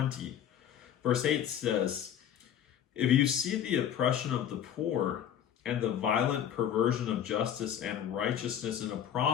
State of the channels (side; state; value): right; quieter; 9.7 dB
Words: Verse 8 says, "If you see the oppression of the poor and the violent perversion of justice and righteousness in a